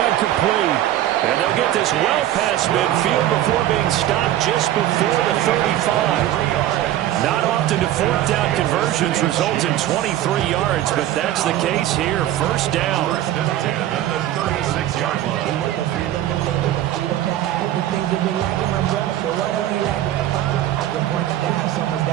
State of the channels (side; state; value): left; quieter; 13.1 dB